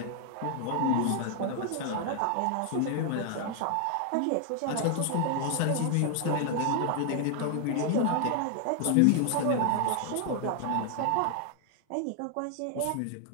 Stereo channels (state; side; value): different; both; correlation 0.00